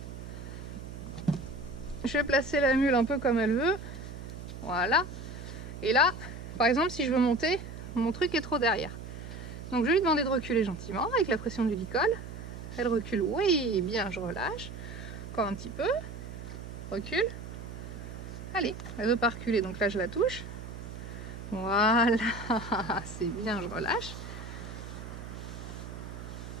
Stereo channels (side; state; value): right; noise; hum, 10 dB below the sound